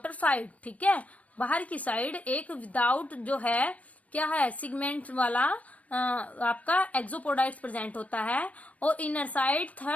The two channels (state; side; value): late; right; 0.067 ms